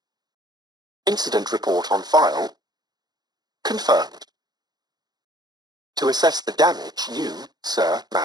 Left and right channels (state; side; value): late; left; 0.20 ms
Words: Incident report on file. Confirmed. To assess the damage you, sir,